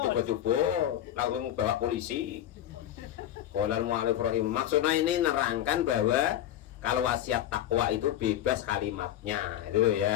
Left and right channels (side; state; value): right; quieter; 11.9 dB